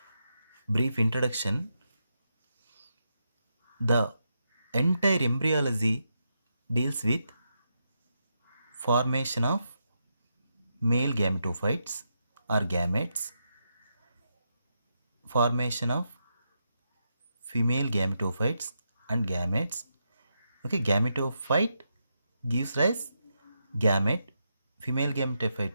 brief introduction, the entire embryology deals with formation of male gametophytes or gametes, formation of female gametophytes and gametes. Okay, gametophyte gives rise gamete, female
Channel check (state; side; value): inverted; both; correlation -0.84